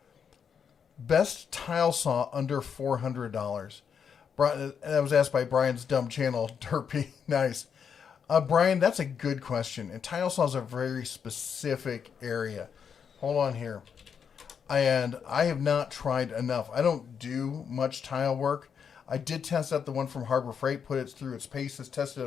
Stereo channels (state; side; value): quieter; right; 7.1 dB